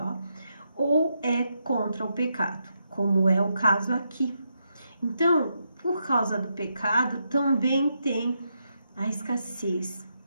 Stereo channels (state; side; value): inverted; both; correlation -0.82